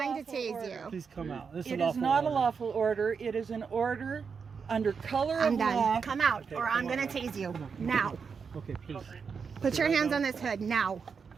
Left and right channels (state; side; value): quieter; left; 5.8 dB